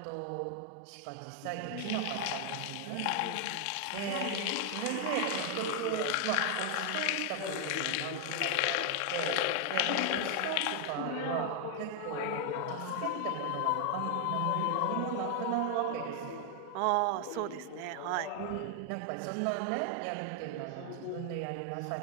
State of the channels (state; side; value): different; both; correlation 0.00